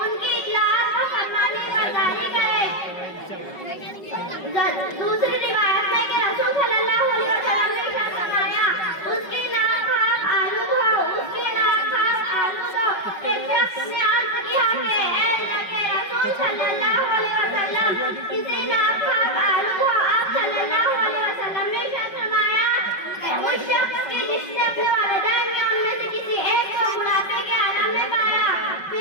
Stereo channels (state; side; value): late; right; 5.4 ms